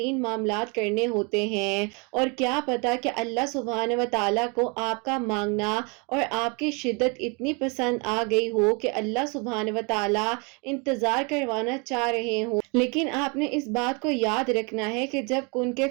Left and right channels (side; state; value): left; quieter; 31.1 dB